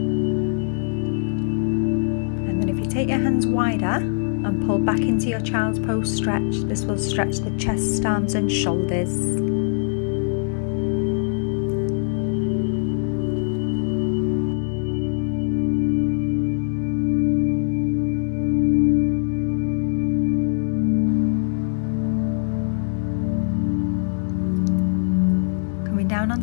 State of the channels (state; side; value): silent; right; 64 dB below the other